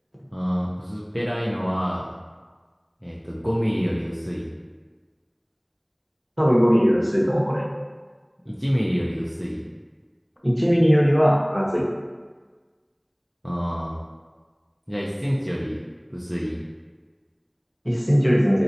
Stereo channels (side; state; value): both; identical; correlation 1.00